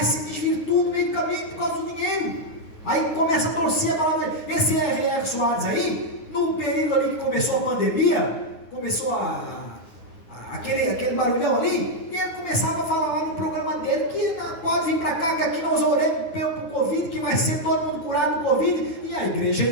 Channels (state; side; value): late; right; 9.3 ms